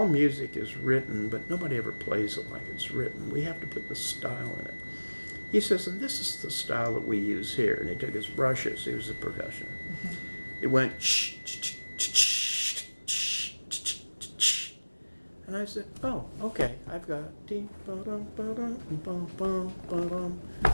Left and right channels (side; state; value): both; inverted; correlation -1.00